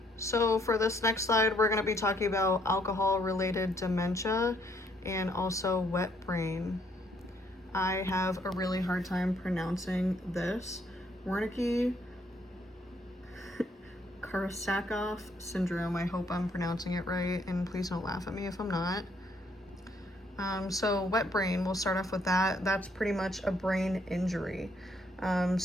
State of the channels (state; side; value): normal; both; correlation 0.69